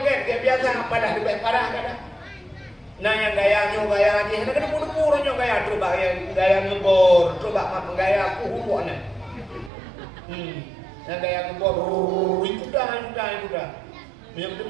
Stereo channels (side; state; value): left; drops out; at 9.7 s